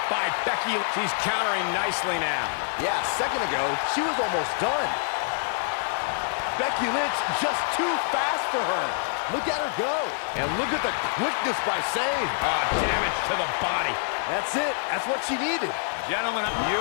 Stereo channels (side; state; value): right; silent; digital silence